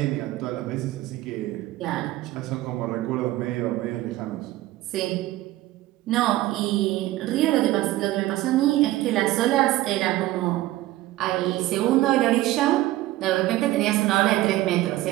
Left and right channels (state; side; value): quieter; left; 16.4 dB